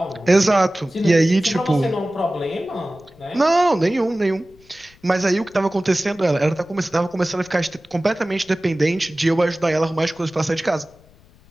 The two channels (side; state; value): left; noise; rumble, 28 dB below the sound